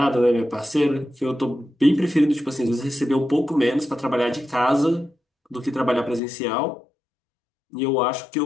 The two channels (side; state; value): right; drops out; at 6.2 s